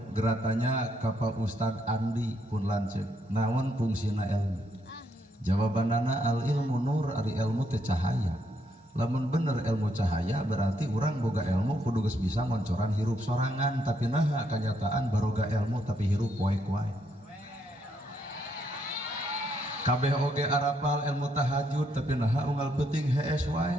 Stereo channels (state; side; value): normal; both; correlation 0.75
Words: geratanya ka Pak Ustad Andi pun lanceuk. Naon fungsina ilmu? Jawabanana al ilmu nur ari ilmu teh cahaya. Lamun bener ilmu cahaya berarti urang boga ilmu kudu geus bisa ngoncoran hirup sorangan tapi naha kenyataan baroga ilmu tapi hirup poek wae. Kabeh oge arapal ilmu tahajud tapi naha unggal peuting hees